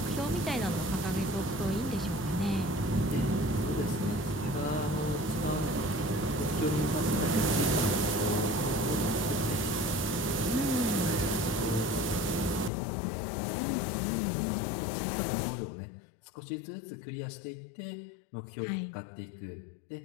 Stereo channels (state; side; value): drops out; right; at 12.7 s